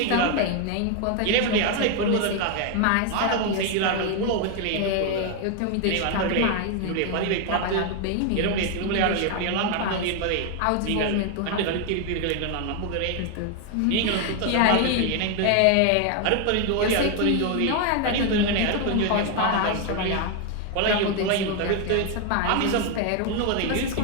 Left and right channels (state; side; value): different; both; correlation 0.01